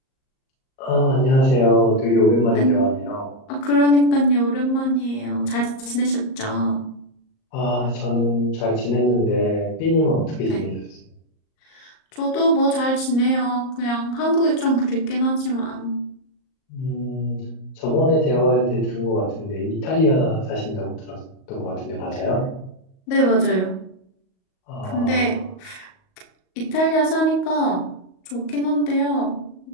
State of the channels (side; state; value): right; late; 38 ms